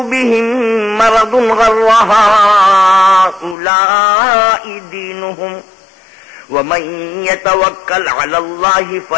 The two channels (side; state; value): right; drops out; at 3.6 s